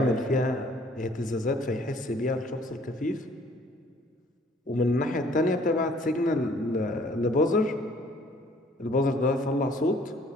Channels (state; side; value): normal; both; correlation 0.58